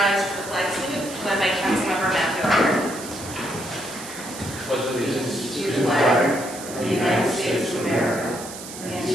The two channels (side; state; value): right; noise; hiss, 12 dB below the sound